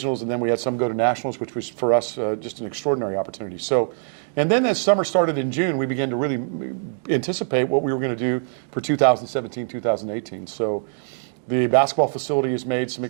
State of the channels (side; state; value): left; silent; digital silence